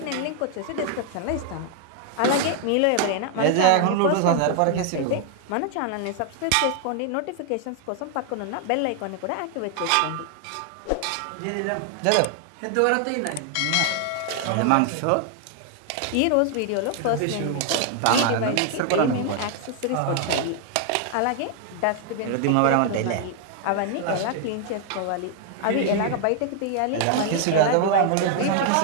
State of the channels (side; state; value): both; different; correlation 0.00